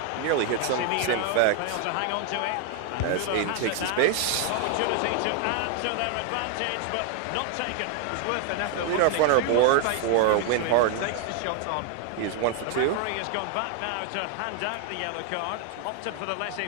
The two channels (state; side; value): different; both; correlation 0.00